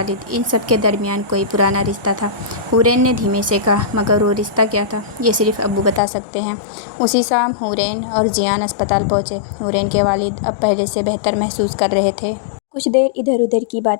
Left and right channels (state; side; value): drops out; right; at 6.0 s